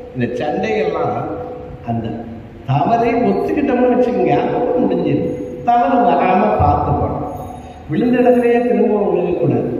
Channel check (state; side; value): identical; both; correlation 1.00